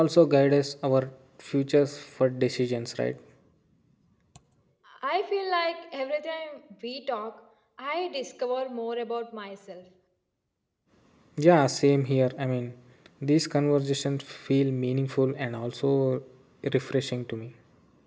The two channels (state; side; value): identical; both; correlation 1.00